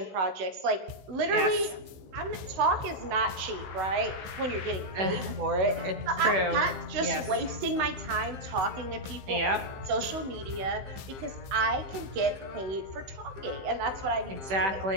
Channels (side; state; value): left; late; 15 ms